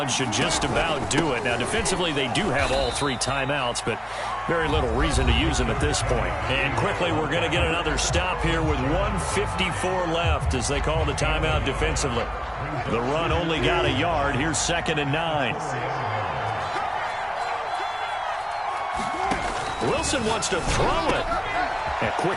should just about do it. Now, defensively, they do have all 3 timeouts, but very little reason to use them at this point. And quickly, we're going to get another stop here with 1:54 left as they call the timeout defensively. The run only got a yard. Here's 2nd and 9. Wilson wants to throw it. A quick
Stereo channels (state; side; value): identical; both; correlation 1.00